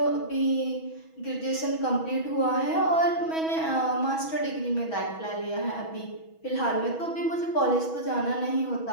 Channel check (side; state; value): right; late; 6.2 ms